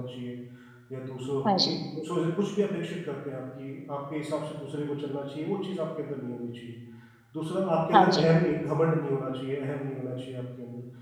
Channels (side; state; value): both; identical; correlation 1.00